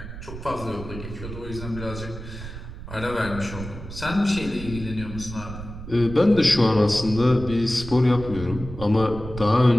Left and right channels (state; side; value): noise; right; rumble, 11 dB below the sound